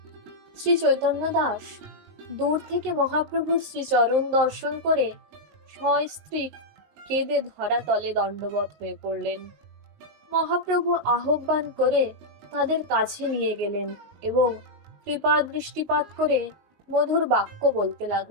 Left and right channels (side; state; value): left; late; 19 ms